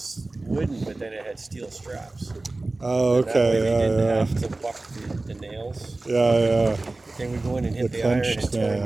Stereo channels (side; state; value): left; quieter; 3.1 dB